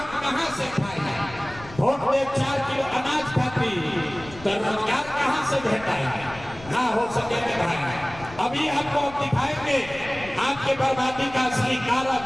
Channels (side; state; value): left; noise; rumble, 17 dB below the sound